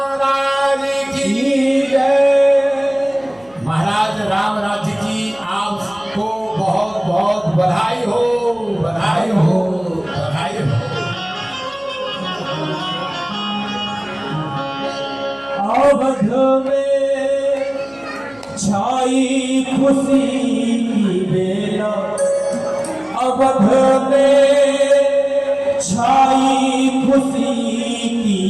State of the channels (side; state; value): right; noise; hum, 29 dB below the sound